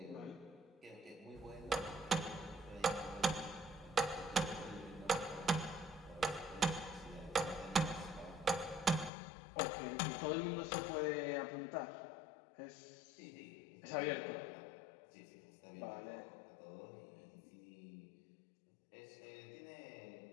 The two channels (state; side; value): drops out; right; at 9.1 s